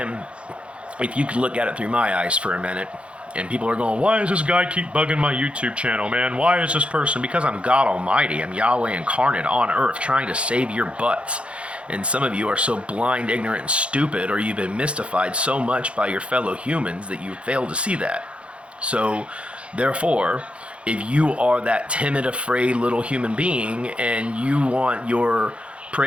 if you could look at it through my eyes for a minute, and people are going, why does this guy keep bugging my YouTube channel, man? Why is this person? Because I'm God Almighty. I'm Yahweh incarnate on earth trying to save your butts. And some of you are so blind, ignorant, and stupid, or you've been mystified so much by your fellow humans that you fail to see that. So, therefore, if you are that timid, afraid little human being and you want your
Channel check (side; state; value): left; late; 0.060 ms